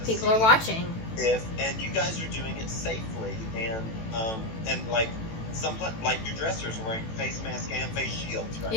People are watching. And you guys are doing it safely and like like your dressers are wearing face masks and face shields, right?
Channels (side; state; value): right; late; 18 ms